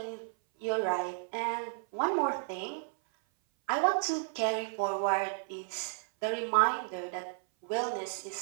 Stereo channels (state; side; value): silent; left; 56 dB below the other